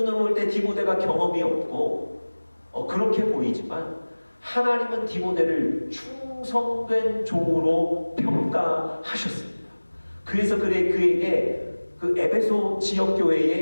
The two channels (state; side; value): inverted; both; correlation -1.00